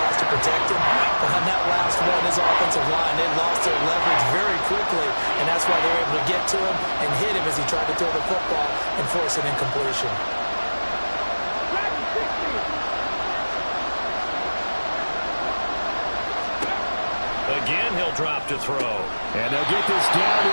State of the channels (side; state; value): both; inverted; correlation -1.00